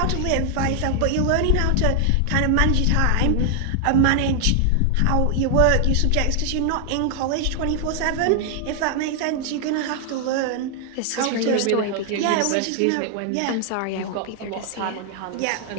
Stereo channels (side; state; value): both; different; correlation 0.00